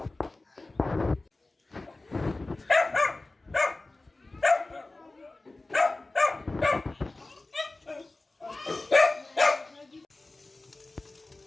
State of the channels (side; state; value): right; quieter; 3.1 dB